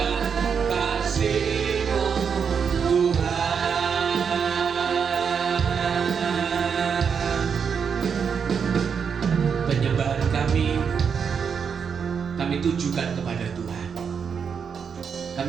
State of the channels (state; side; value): quieter; left; 6.6 dB